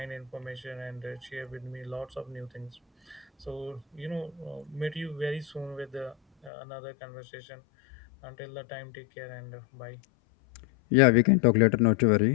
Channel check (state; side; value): drops out; right; at 6.5 s